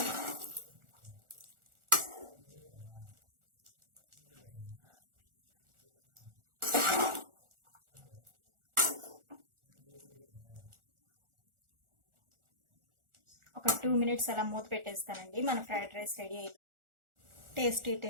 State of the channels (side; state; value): left; late; 1.4 ms